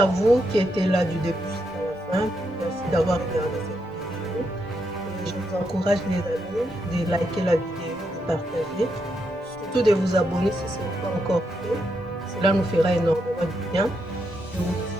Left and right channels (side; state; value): both; normal; correlation 0.81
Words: vous qui étiez là du début jusqu'à la fin. Merci d'avoir regardé cette vidéo. Et je vous encourage les amis de liker la vidéo, de partager, surtout de vous abonner si ce n'est pas encore fait. Cela nous fera énormément de bien. Je vous